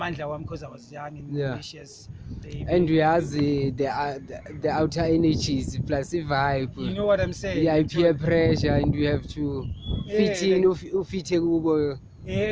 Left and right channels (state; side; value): identical; both; correlation 1.00